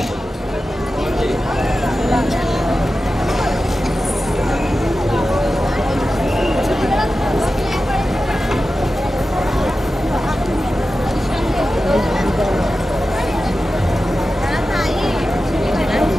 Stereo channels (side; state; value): both; normal; correlation 0.93